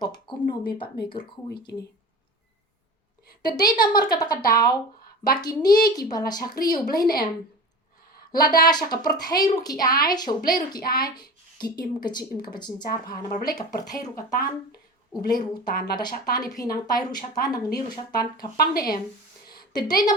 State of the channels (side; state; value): both; normal; correlation 0.33